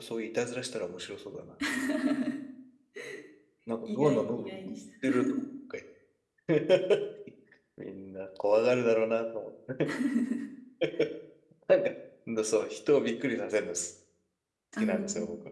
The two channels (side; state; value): both; identical; correlation 1.00